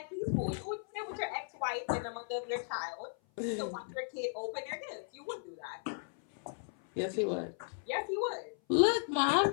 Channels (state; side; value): silent; right; 54 dB below the other